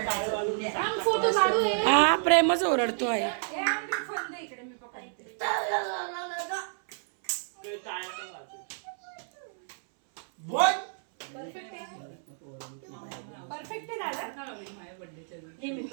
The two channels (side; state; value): left; silent; 58 dB below the other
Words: हा प्रेमच ओरडतो आहे.